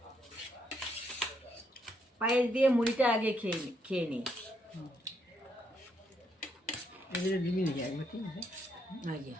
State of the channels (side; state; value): both; normal; correlation 0.75